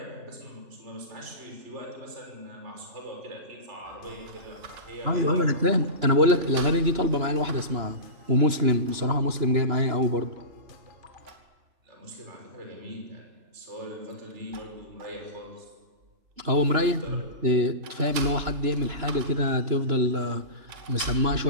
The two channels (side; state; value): left; late; 2.9 ms